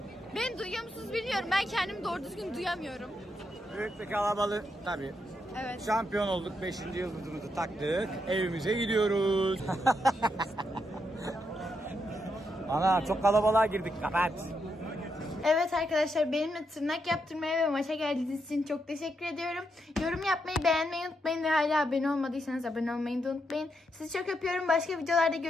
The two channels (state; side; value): normal; both; correlation 0.81